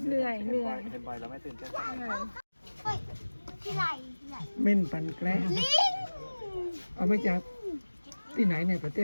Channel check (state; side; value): inverted; both; correlation -1.00